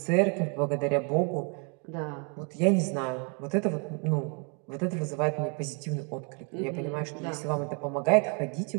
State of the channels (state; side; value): quieter; left; 36.9 dB